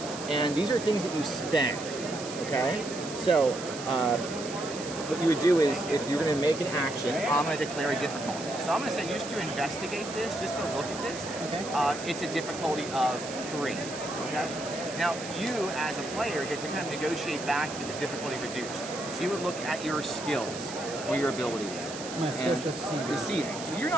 And these are things that you spend. Okay. So what you would do is, if you're going to make an action, I'm going to declare a difficulty. So I'm going to say, just to investigate this, just to look at this, okay. It's a difficulty of 3. Okay. Now, you as a player get to kind of negotiate back with the difficulty reduced. So you would look at your skills or your abilities. My skills to deceiving. So you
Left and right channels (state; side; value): noise; right; hiss, 11 dB below the sound